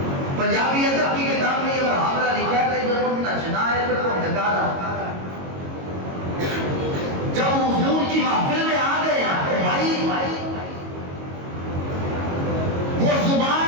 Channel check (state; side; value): late; left; 22 ms